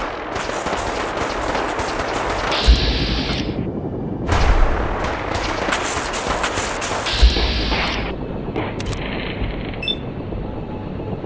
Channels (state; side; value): identical; both; correlation 1.00